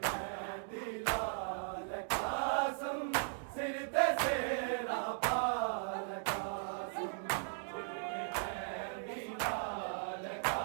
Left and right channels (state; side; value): silent; left; digital silence